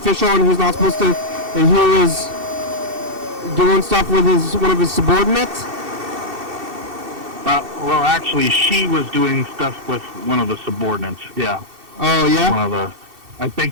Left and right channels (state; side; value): late; left; 2.7 ms